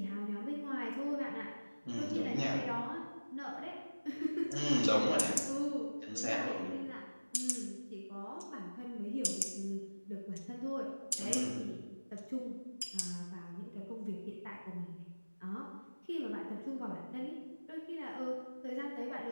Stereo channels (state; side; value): inverted; both; correlation -1.00